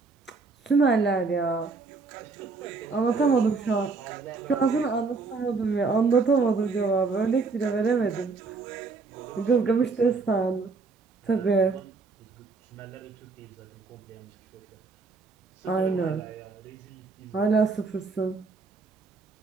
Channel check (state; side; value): quieter; left; 4.2 dB